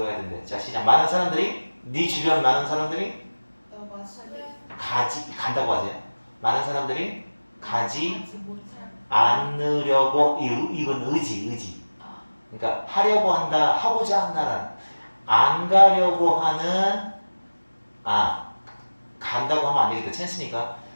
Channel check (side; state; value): both; inverted; correlation -1.00